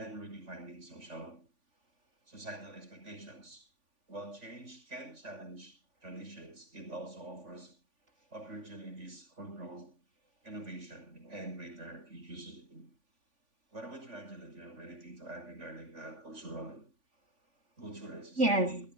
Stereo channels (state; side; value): late; left; 3.5 ms